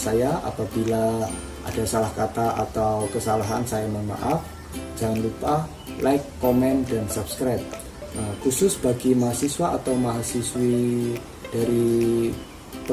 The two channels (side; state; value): both; identical; correlation 1.00